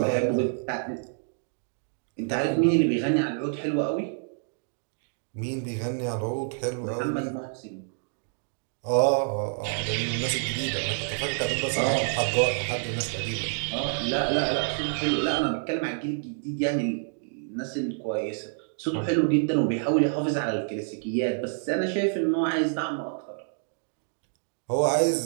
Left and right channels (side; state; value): left; silent; digital silence